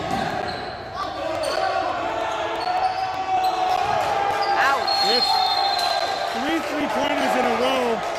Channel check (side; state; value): both; identical; correlation 1.00